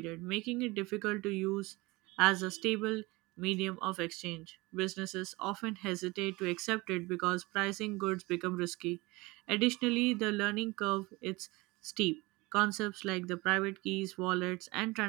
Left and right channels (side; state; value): left; quieter; 23.0 dB